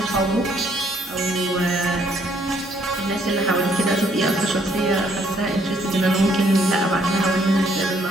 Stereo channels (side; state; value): both; normal; correlation 0.67